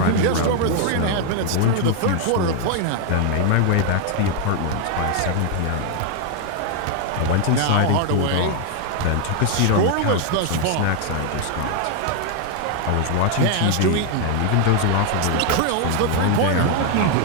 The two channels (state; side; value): different; both; correlation 0.00